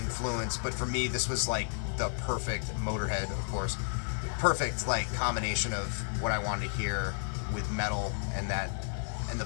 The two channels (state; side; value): silent; right; 56 dB below the other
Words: but for me this was like the perfect, Motorhead of course, perfect like combination of what I wanted to hear with metal and the